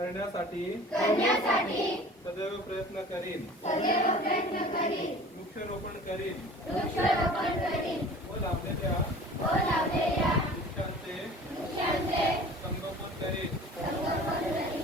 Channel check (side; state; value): both; normal; correlation 0.44